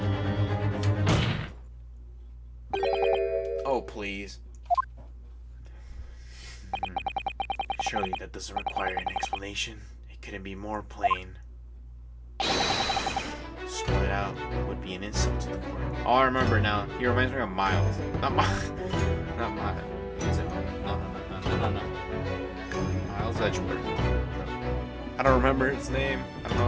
Oh, please. Surely that doesn't require an explanation. It couldn't be more plain. Spell it out would be an insult to the court. Oh, I remember now. He reminds me of Miles. Not Miles. Not Miles. Is it? No. Miles Edgeworth. I don't remember his name. I don't know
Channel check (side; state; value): both; identical; correlation 1.00